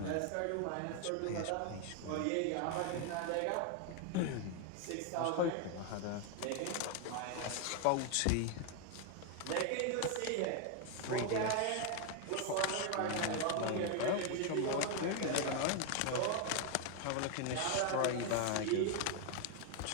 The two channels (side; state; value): both; different; correlation 0.01